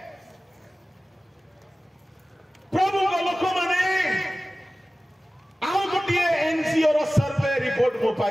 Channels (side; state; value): both; normal; correlation 0.97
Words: प्रभु को लोक माने आउ गोटिए एनसीआर सर्वे रिपोर्ट मो